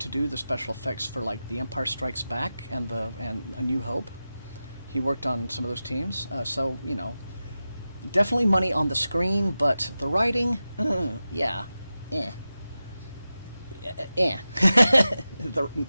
do the special effects for like The Empire Strikes Back and A New Hope. He worked on some of those teams, so definitely money on the screen, but the writing, yeah,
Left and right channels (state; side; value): inverted; both; correlation -0.93